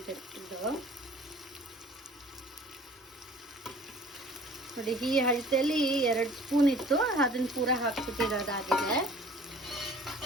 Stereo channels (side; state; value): both; normal; correlation 0.49